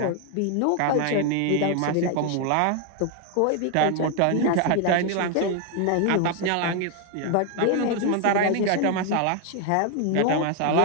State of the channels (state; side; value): different; both; correlation 0.01